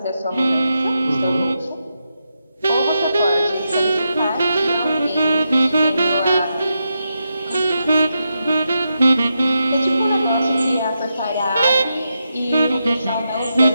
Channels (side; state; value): both; inverted; correlation -0.86